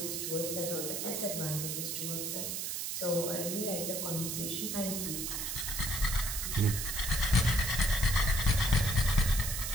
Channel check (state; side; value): noise; right; hiss, 3 dB below the sound